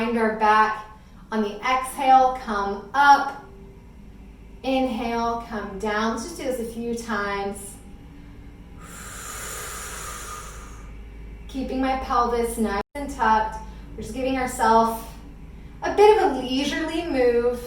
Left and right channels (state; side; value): identical; both; correlation 1.00